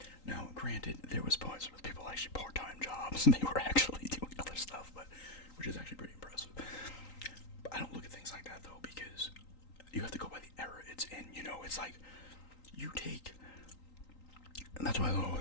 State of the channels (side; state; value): right; late; 3.8 ms